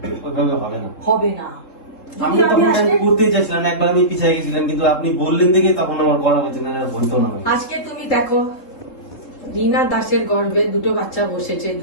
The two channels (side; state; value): right; late; 3.7 ms